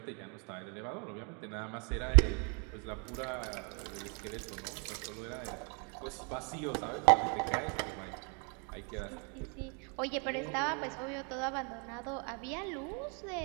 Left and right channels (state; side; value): quieter; left; 36.8 dB